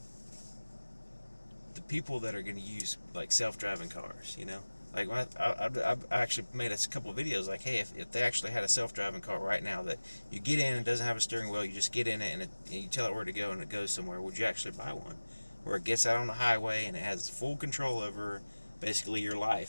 people that are going to use like self-driving cars. You know, like I've actually made a couple videos like, hey, if they actually had a self-driving car right now that you get in and doesn't have a steering wheel, you just get in it and you tell it where to go and it goes somewhere, would you actually buy one? Where it gets out on the highway and it has full control over basically your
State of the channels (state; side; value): inverted; both; correlation -1.00